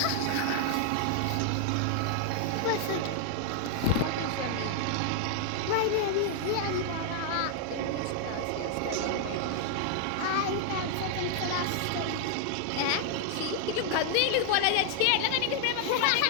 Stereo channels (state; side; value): different; both; correlation 0.00